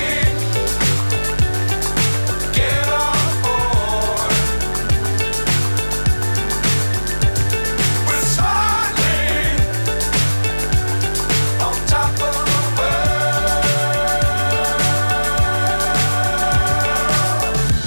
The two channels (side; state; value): both; inverted; correlation -1.00